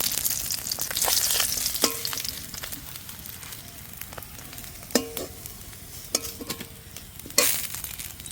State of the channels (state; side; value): identical; both; correlation 1.00